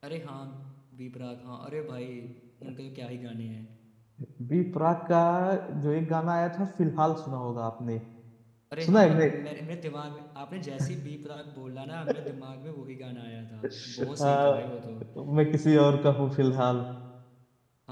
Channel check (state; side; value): identical; both; correlation 1.00